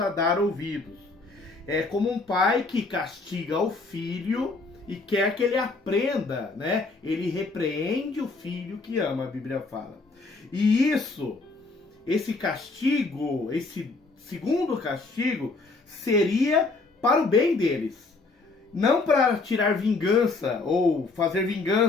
dar ouvidos. É como um pai que castiga o filho e quer que ele aprenda, né? Ele repreende o filho que ama, a Bíblia fala. E esse castigo, esse segundo castigo, seria para o bem deles, não para tirar vingança ou fazer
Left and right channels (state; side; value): quieter; right; 3.7 dB